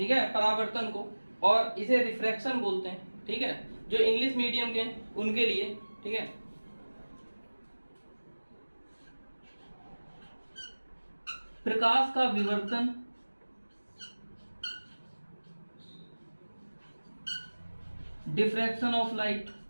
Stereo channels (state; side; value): inverted; both; correlation -1.00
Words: है, परावर्तन को, और इसे रिफ्रैक्शन बोलते हैं। ठीक है, जो इंग्लिश मीडियम के उनके लिए। ठीक है, प्रकाश का विवर्तन, डिफ्रैक्शन ऑफ लाइट।